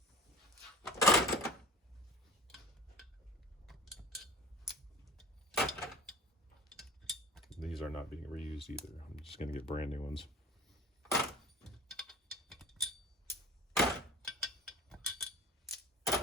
These are not being reused either. I'm just going to get brand new ones.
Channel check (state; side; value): normal; both; correlation 0.41